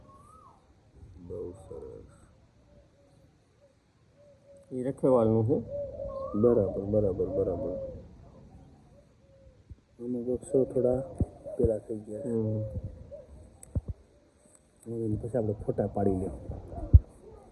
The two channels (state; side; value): identical; both; correlation 1.00